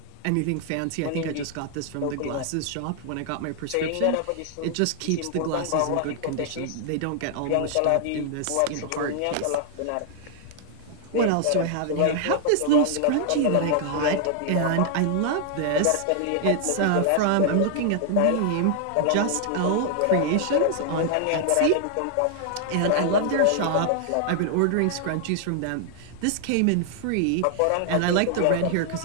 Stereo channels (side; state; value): both; different; correlation -0.01